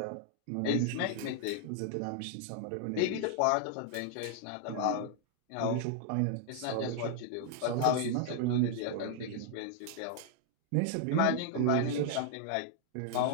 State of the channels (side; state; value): both; different; correlation -0.01